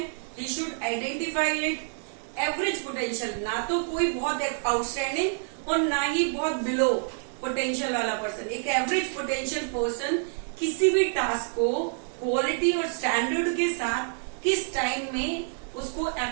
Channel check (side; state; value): left; silent; 60 dB below the other